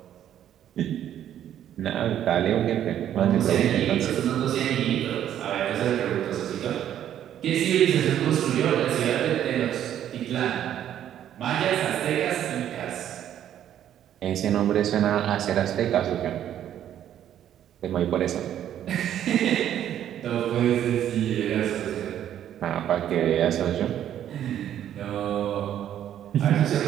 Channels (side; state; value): left; quieter; 10.7 dB